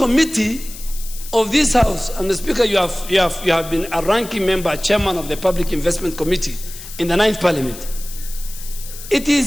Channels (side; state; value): left; noise; hiss, 14 dB below the sound